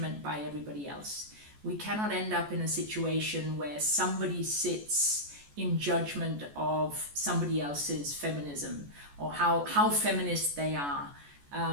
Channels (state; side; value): late; left; 14 ms